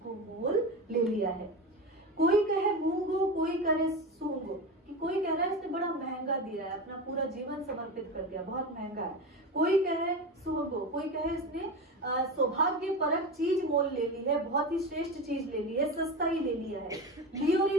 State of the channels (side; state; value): both; normal; correlation 0.24